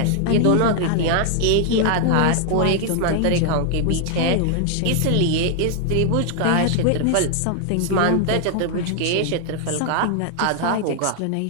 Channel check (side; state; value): both; different; correlation 0.00